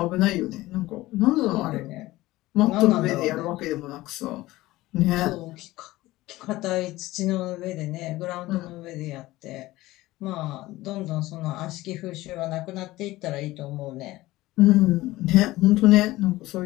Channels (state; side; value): quieter; right; 17.9 dB